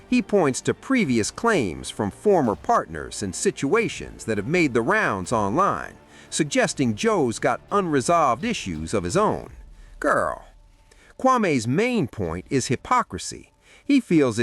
He points to previous claims from former partners and situations that have made the rounds online, suggesting Joe's got unresolved issues of his own. Girl. Kwame's main point is hypocrisy. He feels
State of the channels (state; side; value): identical; both; correlation 1.00